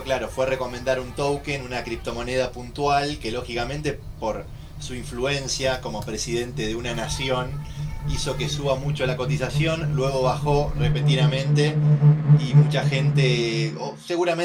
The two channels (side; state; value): both; identical; correlation 1.00